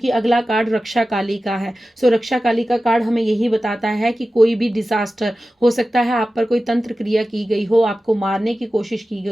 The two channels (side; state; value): both; normal; correlation 0.95